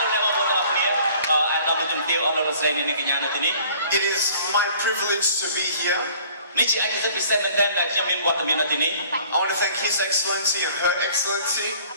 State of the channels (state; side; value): inverted; both; correlation -0.53